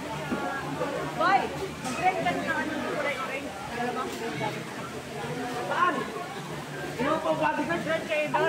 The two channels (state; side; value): identical; both; correlation 1.00